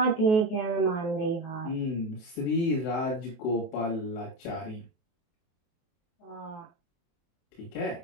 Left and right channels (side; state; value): right; late; 23 ms